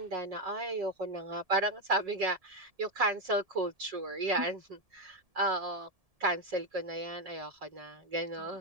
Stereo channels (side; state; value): left; late; 1.7 ms